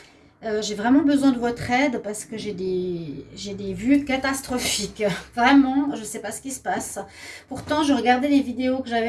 J'ai vraiment besoin de votre aide parce que j'ai des vues catastrophiques. Vraiment, je ne sais pas ce qui se passe. Pourtant, je regardais les vidéos que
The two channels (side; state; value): both; identical; correlation 1.00